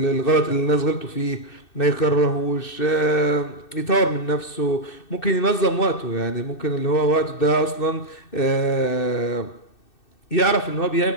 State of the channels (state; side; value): late; right; 2.6 ms